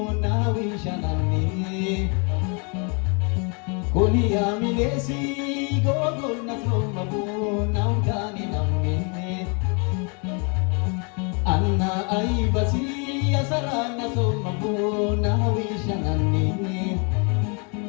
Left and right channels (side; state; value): right; quieter; 35.4 dB